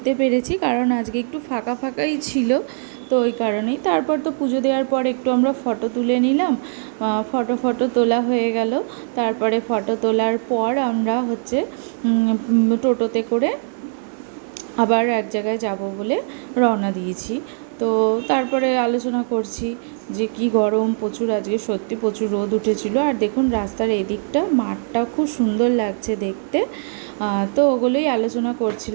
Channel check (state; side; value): silent; left; 65 dB below the other